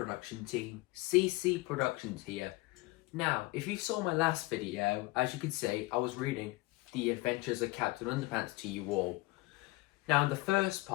team, CC Productions here. Now, if you saw my last video, as you can see, I was reading The Adventures of Captain Underpants to you all. Now, in the first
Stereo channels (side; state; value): right; quieter; 21.3 dB